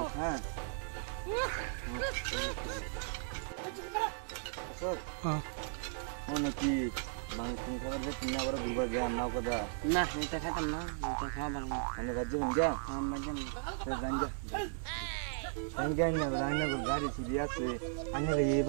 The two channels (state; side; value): silent; left; digital silence